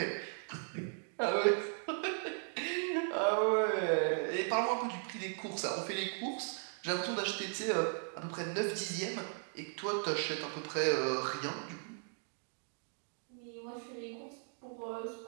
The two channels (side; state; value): left; silent; 53 dB below the other